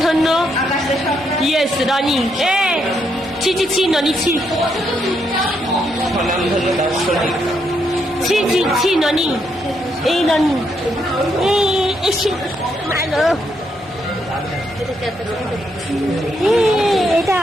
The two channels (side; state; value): both; normal; correlation 0.77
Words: ইয়েস রনি। ছি ছি ছি ননি ছি ছি ছি ছি ননি। এই ননি এটা